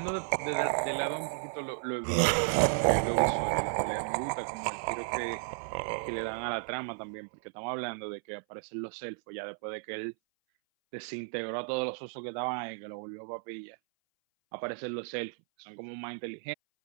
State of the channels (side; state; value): left; silent; 55 dB below the other